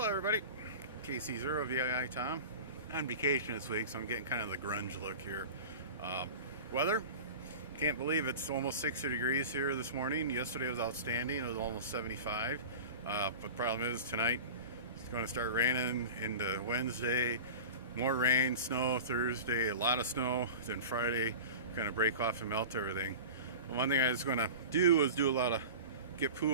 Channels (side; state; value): both; inverted; correlation -0.33